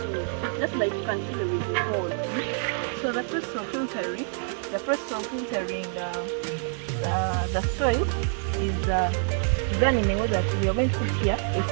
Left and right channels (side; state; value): left; silent; 60 dB below the other